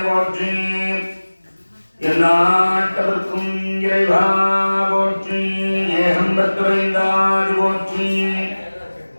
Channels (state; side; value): inverted; both; correlation -1.00